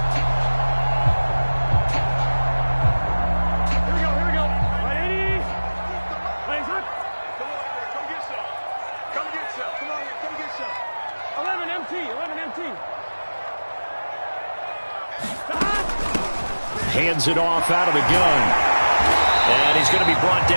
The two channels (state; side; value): inverted; both; correlation -1.00